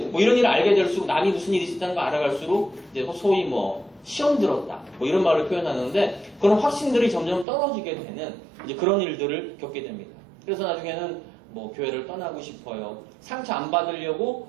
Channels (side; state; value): left; drops out; at 7.5 s